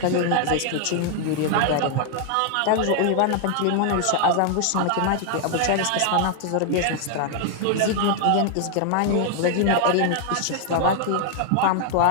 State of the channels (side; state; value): both; different; correlation 0.00